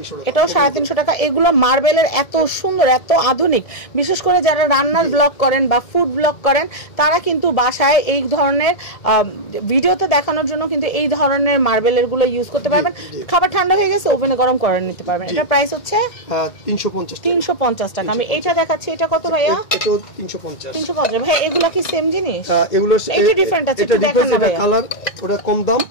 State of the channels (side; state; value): right; late; 1.7 ms